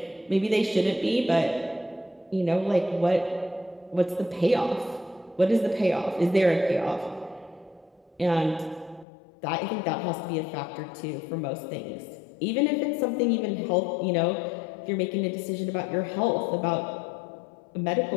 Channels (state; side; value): drops out; right; at 9.1 s